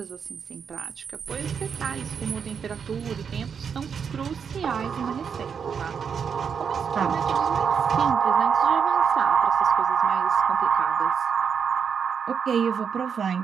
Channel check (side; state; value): left; quieter; 6.8 dB